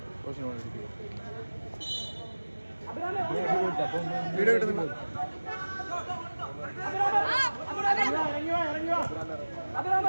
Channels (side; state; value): both; inverted; correlation -1.00